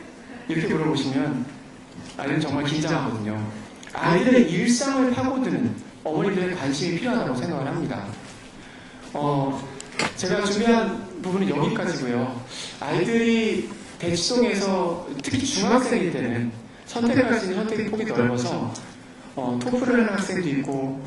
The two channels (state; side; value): identical; both; correlation 1.00